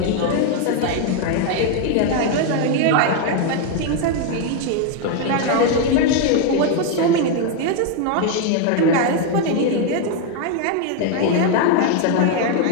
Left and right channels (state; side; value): different; both; correlation 0.01